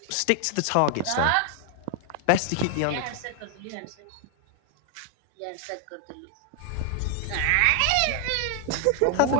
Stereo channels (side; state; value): both; different; correlation 0.00